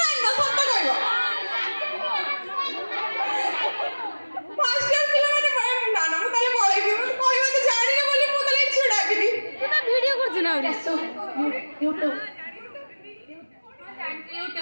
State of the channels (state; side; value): inverted; both; correlation -1.00